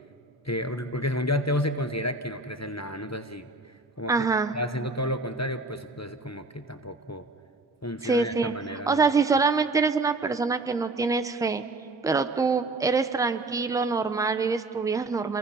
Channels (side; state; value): left; quieter; 3.1 dB